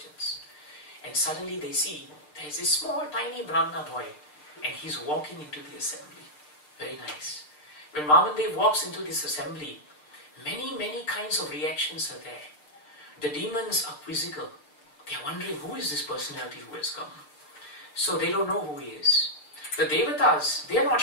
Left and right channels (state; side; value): late; right; 6.6 ms